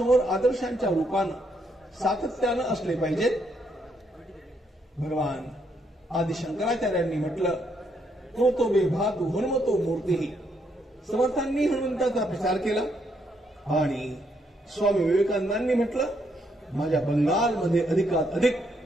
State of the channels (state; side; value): normal; both; correlation 0.75